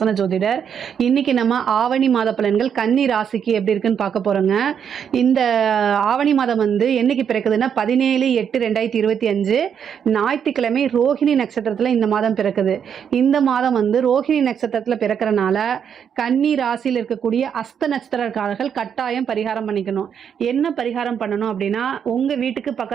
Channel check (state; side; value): quieter; left; 7.9 dB